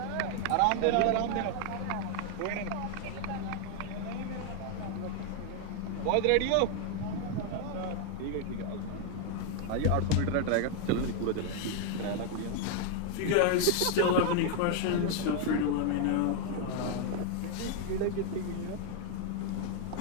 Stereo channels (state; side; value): different; both; correlation 0.00